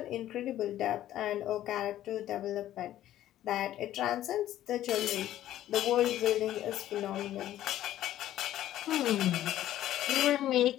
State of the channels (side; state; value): right; quieter; 12.9 dB